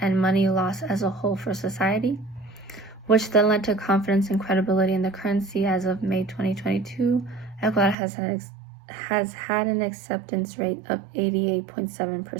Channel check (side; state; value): left; drops out; at 8.0 s